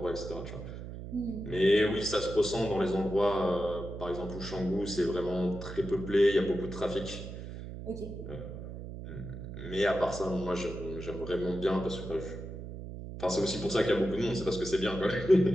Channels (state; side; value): noise; right; hum, 9 dB below the sound